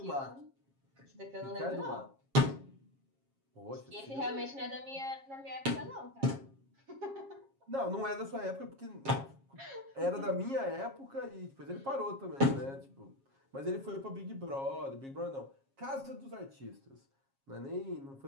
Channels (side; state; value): left; late; 7.4 ms